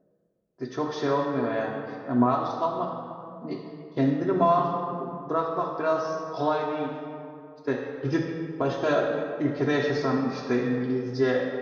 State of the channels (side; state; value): both; identical; correlation 1.00